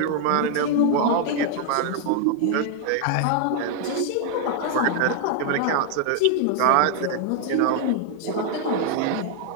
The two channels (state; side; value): different; both; correlation 0.00